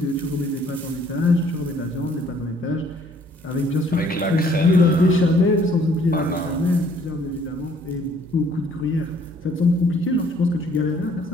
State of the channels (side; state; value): both; normal; correlation 0.61